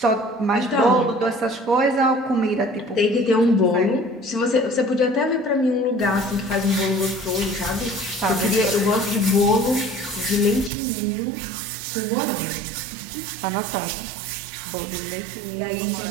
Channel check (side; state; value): left; drops out; at 10.7 s